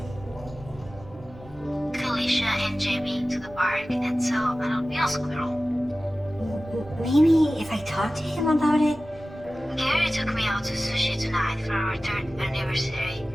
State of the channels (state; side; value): normal; both; correlation 0.96